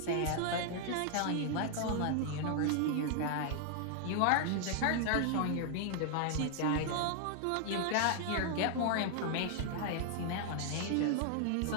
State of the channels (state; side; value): different; both; correlation 0.00